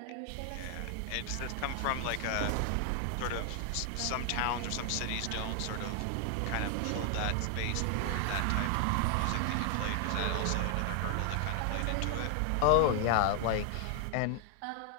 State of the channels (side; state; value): both; different; correlation 0.00